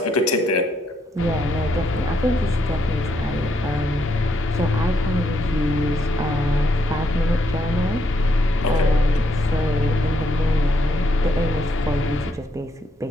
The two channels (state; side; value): normal; both; correlation 0.76